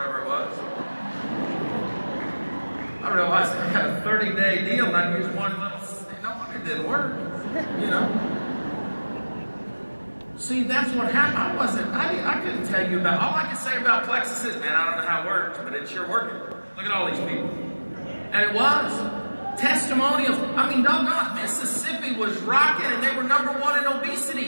it was. I realized I had a 30-day deal and I used one little, no wonder it didn't work, you know. See, that's what happened. I couldn't tell you about, all I could say about Plexus is, man, I don't know how it works, but it's sure working. Look at all these people. And it was. Testimonials. I mean, doggone, Mississippi was rocking and they were #1 in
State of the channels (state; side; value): inverted; both; correlation -1.00